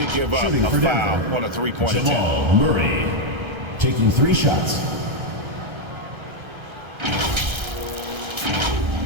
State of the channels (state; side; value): late; left; 1.3 ms